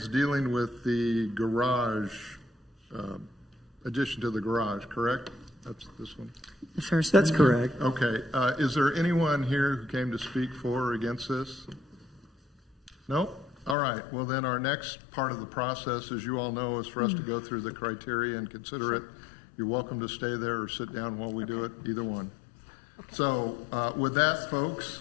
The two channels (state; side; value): drops out; right; at 13.8 s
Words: dealing with the garage, addition to the garage, correct? That's this one. The first That's one. correct. Okay, is there anyone here who came to speak for or against this? No? All right, well then our next part of the process, as you all know, is for us to go through the criteria and consider it. You're welcome to stay there or sit down while we do it, either one. So with that,